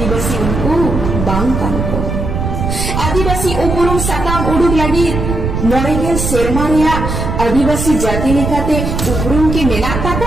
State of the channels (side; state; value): right; noise; rumble, 3 dB below the sound